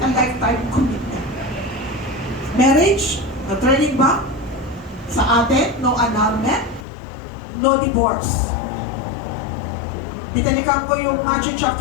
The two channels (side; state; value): right; drops out; at 6.9 s